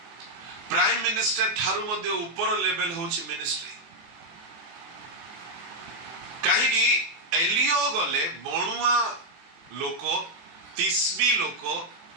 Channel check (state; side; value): late; left; 24 ms